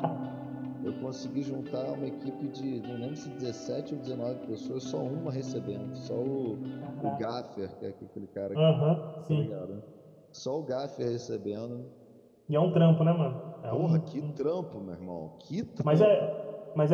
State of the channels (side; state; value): both; identical; correlation 1.00